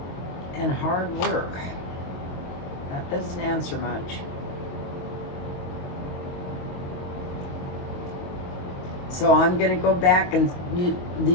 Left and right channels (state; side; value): late; right; 23 ms